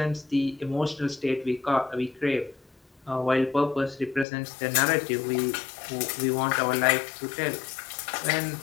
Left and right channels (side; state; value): right; drops out; at 4.2 s